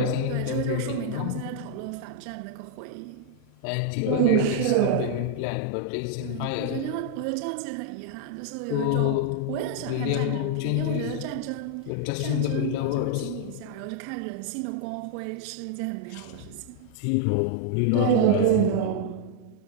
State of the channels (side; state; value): both; different; correlation -0.01